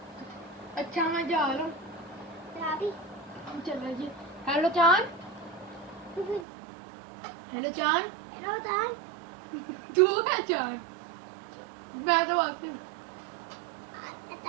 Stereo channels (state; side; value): drops out; left; at 6.5 s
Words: अच्छा मैं जा रहा हूँ। रावी। चलो जी। हेलो चांद। हेलो चांद। हेलो दान। तू है चांद? मैं तो आती हूँ।